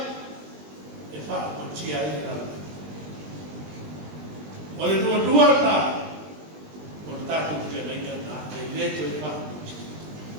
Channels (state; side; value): late; left; 20 ms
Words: E fa o tia ina. O le dua na. O tato te le na. Le te fa.